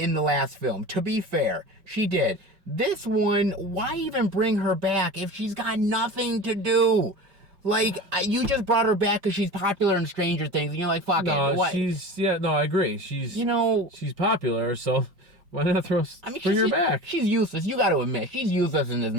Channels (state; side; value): late; left; 5.2 ms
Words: the last film. To be fair, she did. This one, why even bring her back if she's got nothing to do? Like, you just brought her back because she's popular in Stranger Things, and you're like, fuck it. What? I agree. She's popular, so why not bring her back? She's useless. You got to admit, she's useless in this